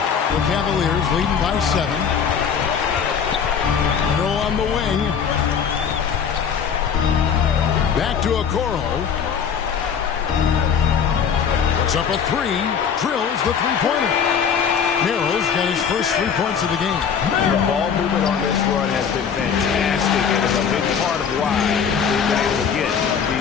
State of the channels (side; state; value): right; quieter; 7.1 dB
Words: The Cavaliers leading by 7. Hero on the wing. Back to Okoro. Puts up a 3. Drills the three-pointer. Merrill's got his first 3 points of the game. The ball movement on this run has been fantastic, and is a big part of why they've been able to get